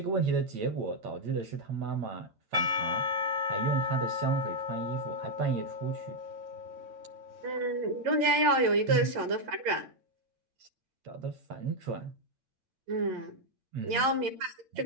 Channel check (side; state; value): left; late; 8.9 ms